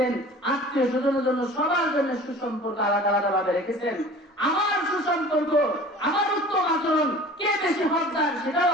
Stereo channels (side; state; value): both; normal; correlation 0.43